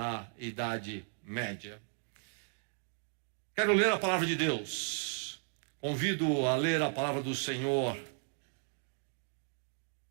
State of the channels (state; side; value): quieter; left; 38.6 dB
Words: Idade Média. Quero ler a palavra de Deus. Convido a ler a palavra do Senhor.